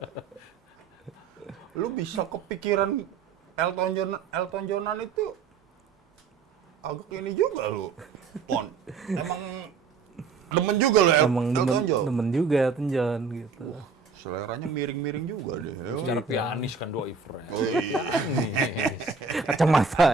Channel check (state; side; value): quieter; left; 5.2 dB